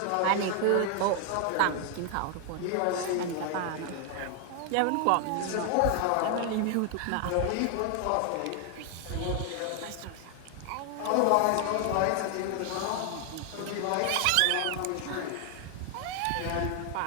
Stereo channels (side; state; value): both; different; correlation 0.00